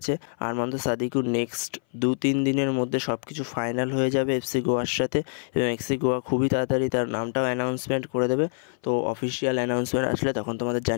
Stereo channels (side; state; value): right; silent; 58 dB below the other